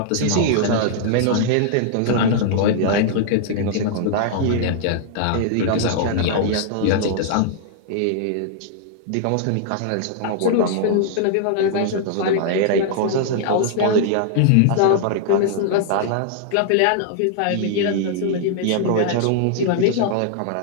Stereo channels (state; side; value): different; both; correlation -0.01